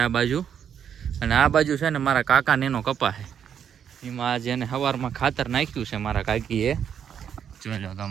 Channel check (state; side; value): quieter; left; 8.4 dB